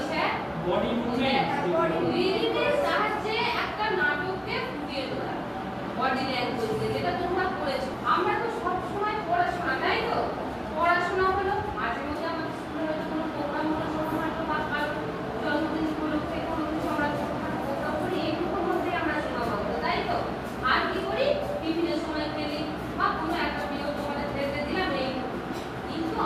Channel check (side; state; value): both; identical; correlation 1.00